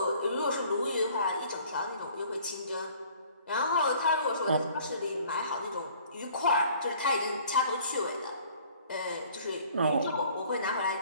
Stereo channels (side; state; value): both; inverted; correlation -0.54